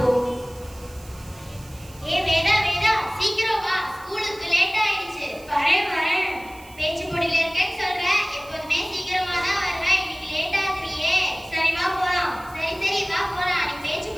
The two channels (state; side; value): noise; right; hiss, 23 dB below the sound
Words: ஏ வேதா வேதா, சீக்கிரம் வா, ஸ்கூலுக்கு லேட் ஆயிடுச்சு. வரேன் வரேன். பேச்சு போட்டியில இருக்கேன்னு சொல்றேன், எப்போதுமே சீக்கிரமா தான் வருவேன், இன்னைக்கு லேட் ஆகுறியே. சரி வா போலாம். சரி சரி வா போலாம். நீ பேச்சு